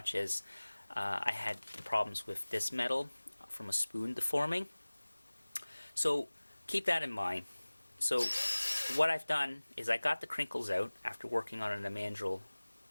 as I had problems with this metal from a spoon deforming. So keep that in mind. So what I've done is I got the crinkles out after working on it in the mandrel,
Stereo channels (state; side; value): inverted; both; correlation -1.00